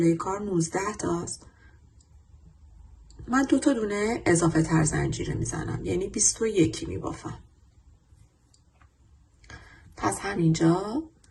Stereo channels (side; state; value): both; identical; correlation 1.00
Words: کار 19 تاست. من 2 تا دونه اضافه تر زنجیره میزنم، یعنی 21 میبافم. پس همینجا